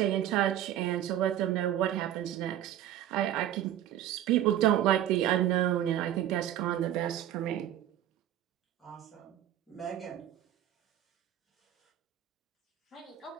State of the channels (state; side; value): quieter; left; 11.9 dB